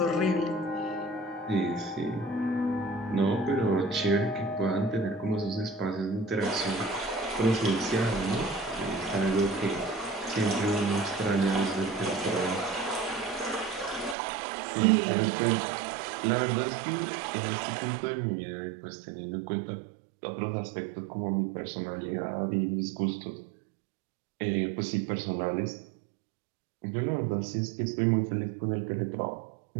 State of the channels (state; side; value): drops out; left; at 14.2 s